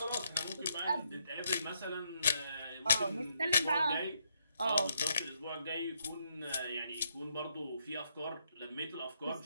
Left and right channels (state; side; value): inverted; both; correlation -0.77